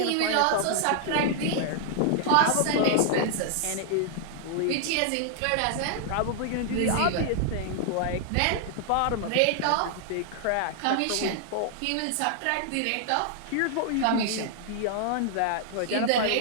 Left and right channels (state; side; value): different; both; correlation -0.01